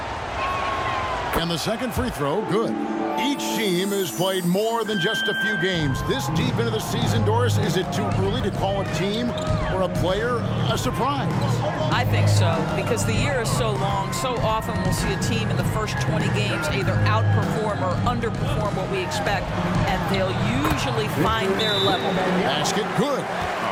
And the second free throw, good. Each team has played more than just a few games. This deep into the season, Doris, is it too early to call a team or a player a surprise? I think so, because the year is so long. So often we'll see a team in the first 20 games either outperform or underperform what we expect, and they'll usually find their level. Basket, good.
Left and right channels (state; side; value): identical; both; correlation 1.00